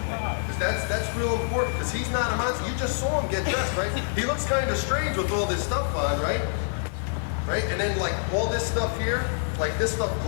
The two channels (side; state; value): right; silent; digital silence